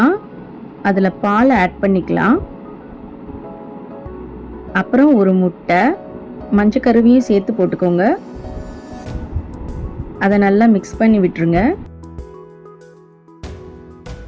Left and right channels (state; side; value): identical; both; correlation 1.00